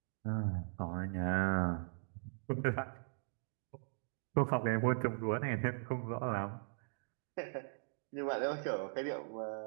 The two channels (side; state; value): left; silent; digital silence